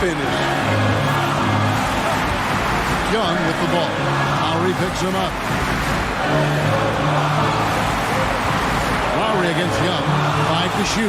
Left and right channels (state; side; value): identical; both; correlation 1.00